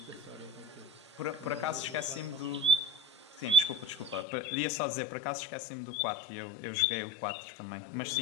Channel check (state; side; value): drops out; right; at 4.2 s